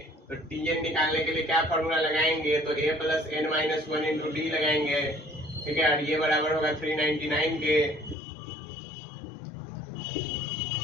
तो टीएन निकालने के लिए क्या फॉर्मूला लगाएंगे, तो A plus N minus 1 into D लगाएंगे। ठीक है, और ये बराबर होगा 399 के।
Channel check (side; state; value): right; drops out; at 8.2 s